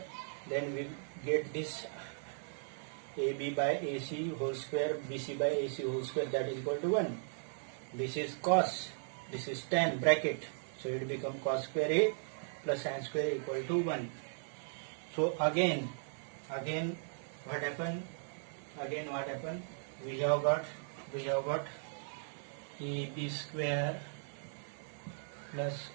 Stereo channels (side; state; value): left; silent; digital silence